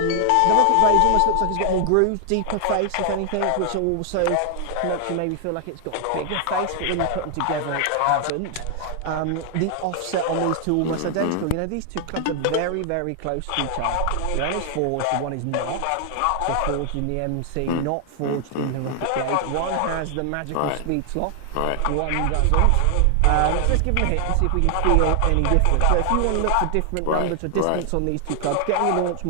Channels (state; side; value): different; both; correlation 0.00